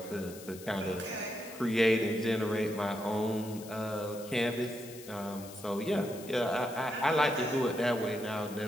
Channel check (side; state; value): left; noise; hiss, 16 dB below the sound